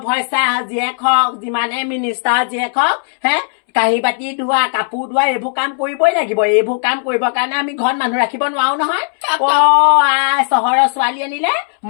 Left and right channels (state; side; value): silent; right; 69 dB below the other